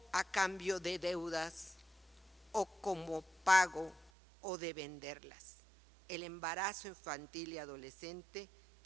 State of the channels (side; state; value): left; drops out; at 4.1 s